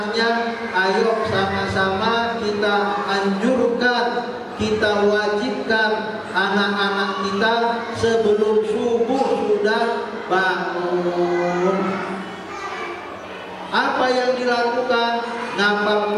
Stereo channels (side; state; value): both; identical; correlation 1.00